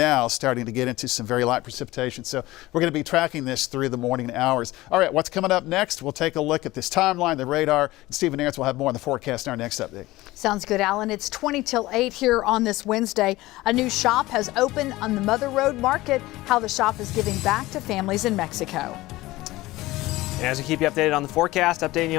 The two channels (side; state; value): right; quieter; 18.5 dB